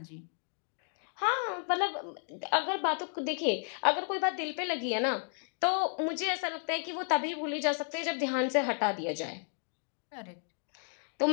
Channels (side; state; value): right; silent; 56 dB below the other